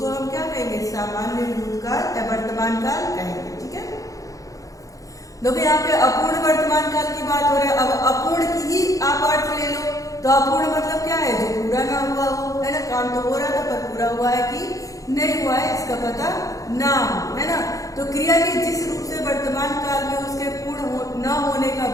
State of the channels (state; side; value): late; right; 0.16 ms